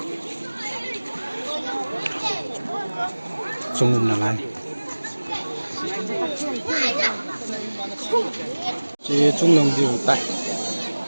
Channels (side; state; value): both; inverted; correlation -1.00